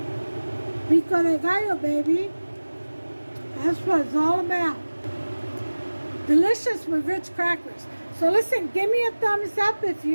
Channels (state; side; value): inverted; both; correlation -1.00